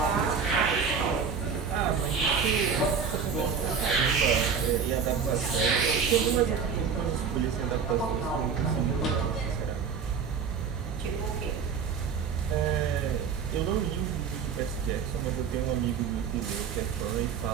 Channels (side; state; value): left; quieter; 6.3 dB